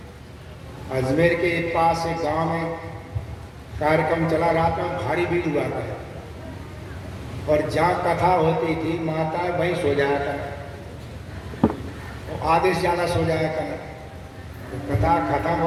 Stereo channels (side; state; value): both; identical; correlation 1.00